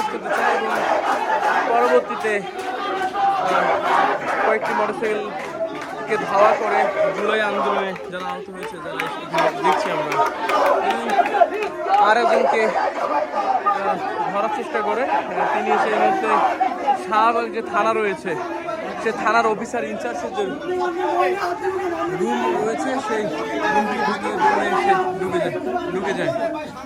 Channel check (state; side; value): identical; both; correlation 1.00